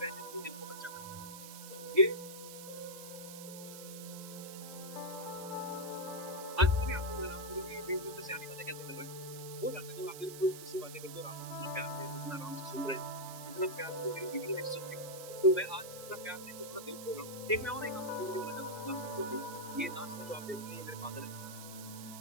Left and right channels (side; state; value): right; noise; hiss, 11 dB below the sound